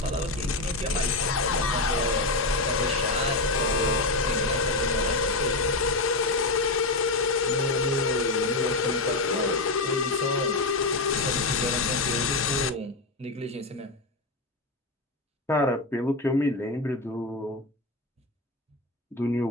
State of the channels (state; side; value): quieter; right; 3.1 dB